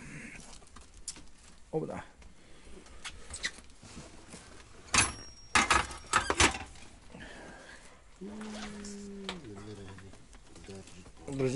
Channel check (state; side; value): identical; both; correlation 1.00